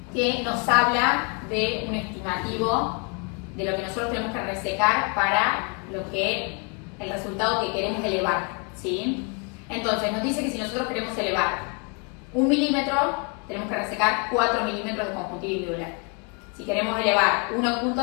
que nos habla de un estimativo de lo que nosotros tenemos que resecar para lo que el resultado que queremos elevar, ¿sí? Entonces nos dice que si nosotros queremos elevar 1 milímetro, tenemos que resecar 4 milímetros de conjuntiva y Müller. Si queremos elevar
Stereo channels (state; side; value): quieter; right; 35.5 dB